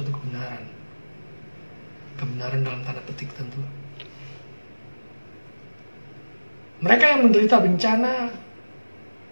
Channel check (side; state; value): both; inverted; correlation -1.00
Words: kebenaran. Kebenaran dalam tanda petik tentu. Mereka yang menderita bencana